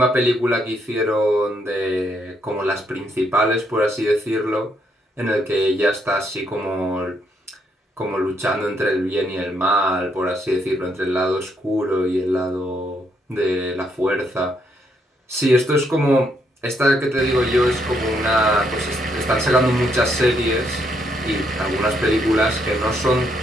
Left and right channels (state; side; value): normal; both; correlation 0.74